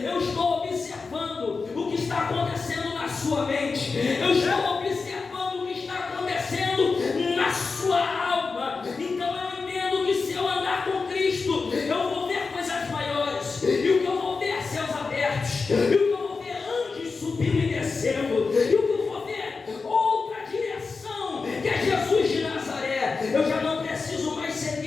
estou observando o que está acontecendo na sua mente. Eu estou observando o que está acontecendo na sua alma. Então eu entendo que se eu andar com Cristo, eu vou ver coisas maiores. E o que eu vou ver é céus abertos. E o que eu vou ver é anjos subindo e descendo. E o que eu vou ver é outra direção, que é Jesus de Nazaré. Eu já não preciso mais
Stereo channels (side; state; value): right; quieter; 4.5 dB